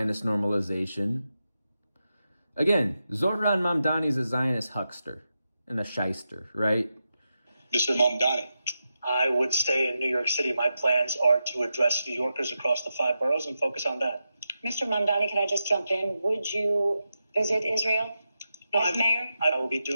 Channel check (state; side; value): inverted; both; correlation -0.88